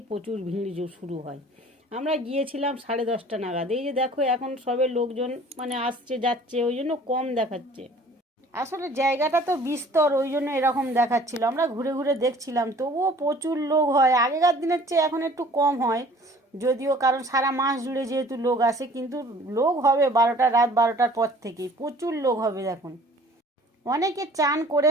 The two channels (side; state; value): both; normal; correlation 0.50